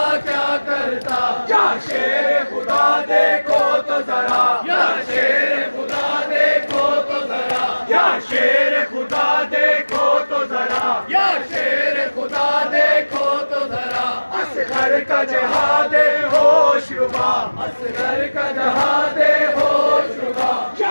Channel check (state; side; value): inverted; both; correlation -1.00